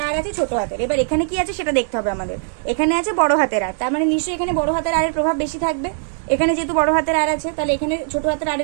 আর আছে ছোট হাতের, এবার এখানে কি আছে সেটা দেখতে হবে আমাদের, এখানে আছে বড় হাতের আর, তার মানে নিশ্চয়ই এখানে বড় হাতের আরের প্রভাব বেশি থাকবে, এখানে যেহেতু বড় হাতের আর আছে তাহলে এখানে ছোট হাতের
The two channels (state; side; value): silent; left; digital silence